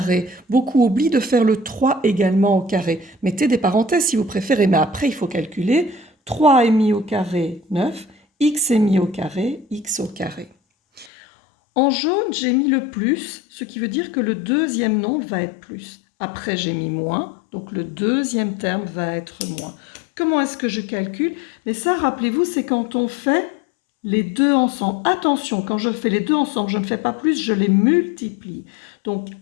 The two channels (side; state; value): right; drops out; at 11.1 s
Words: Beaucoup oublient de faire le 3 également au carré. Mettez des parenthèses si vous préférez, mais après, il faut calculer. 3 est mis au carré, 9. X est mis au carré, x au carré. En jaune, j'ai mis le plus, ce qui veut dire que le deuxième nombre va être plus. Après, j'ai mis moins, donc le deuxième terme va être moins. Comment est-ce que je calcule? Mais ça, rappelez-vous, c'est quand on fait les deux ensemble. Attention, quand je fais les deux ensemble, je ne fais pas plus, je les multiplie. Donc,